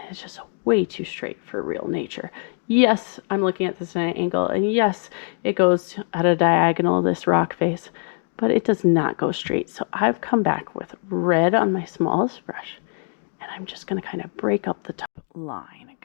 it's just way too straight for real nature. Yes, I'm looking at this at an angle, and yes, it goes at a diagonal, this rock face, but it does not go straight. So I've come back with red on my smallest brush, and I'm just going to kind of break up the top line and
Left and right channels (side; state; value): right; silent; 55 dB below the other